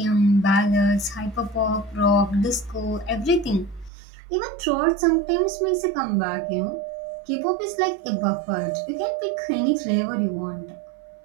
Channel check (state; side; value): drops out; left; at 3.9 s